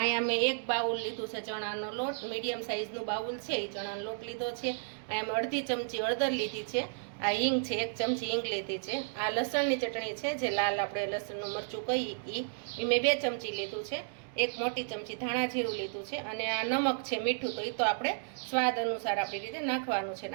મેં એક બાઉલ લીધું છે ચણાનો લોટ, મીડિયમ સાઇઝનું બાઉલ છે. એ ચણાનો લોટ લીધો છે. અહીંયા મેં અડધી ચમચી હળદર લીધી છે. આ હિંગ છે, 1 ચમચી હિંગ લીધી છે. આ લસણની ચટણી છે, જે લાલ આપણે લસણનું મરચું કહીએ એ મેં 2 ચમચી લીધું છે. 1 મોટી ચમચી ધાણા જીરું લીધું છે. અને આ નમક છે, મીઠું, તો એ તો આપણે સ્વાદ અનુસાર આપણી રીતે નાખવાનું છે.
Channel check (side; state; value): left; silent; digital silence